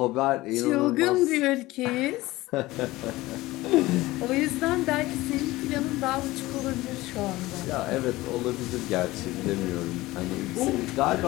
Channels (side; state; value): right; quieter; 18.8 dB